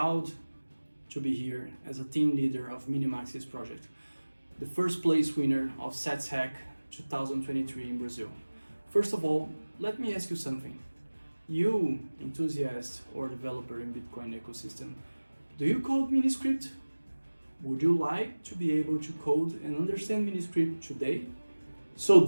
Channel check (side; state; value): both; inverted; correlation -1.00